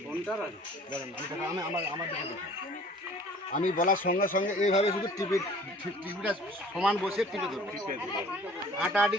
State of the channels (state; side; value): normal; both; correlation 0.50